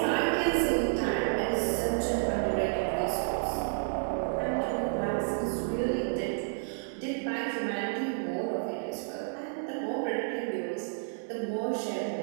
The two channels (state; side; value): silent; left; digital silence